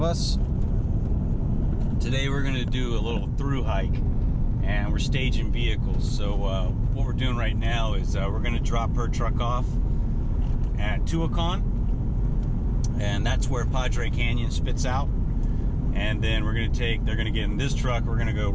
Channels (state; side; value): identical; both; correlation 1.00